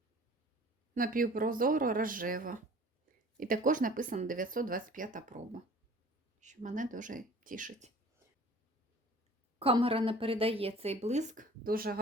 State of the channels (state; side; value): normal; both; correlation 0.48